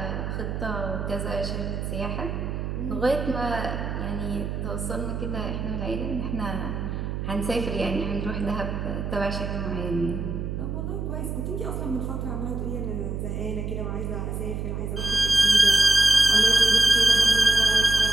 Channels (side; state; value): right; noise; hum, 4 dB below the sound